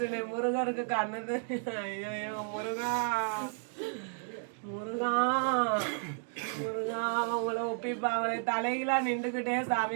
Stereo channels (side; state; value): left; silent; 56 dB below the other